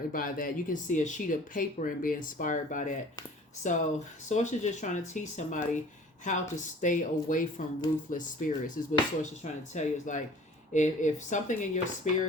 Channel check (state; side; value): normal; both; correlation 0.48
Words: by that. You can see a sheet of paper and be inspired by that. So Source is just trying to teach somebody how to stay away from ruthless spirits is what Source is trying to tell you. Is like, if something in your